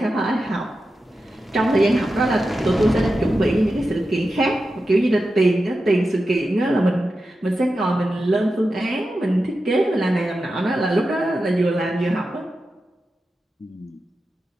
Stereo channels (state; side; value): normal; both; correlation 0.91